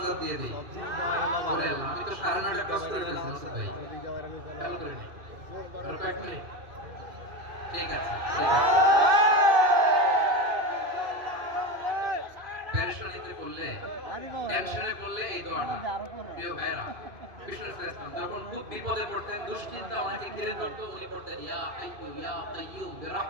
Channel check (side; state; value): left; late; 2.5 ms